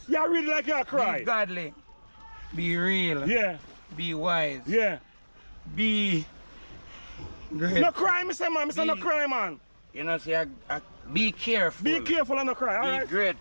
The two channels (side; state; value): both; inverted; correlation -1.00